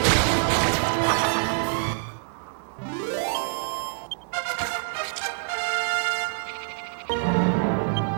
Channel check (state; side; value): silent; left; 61 dB below the other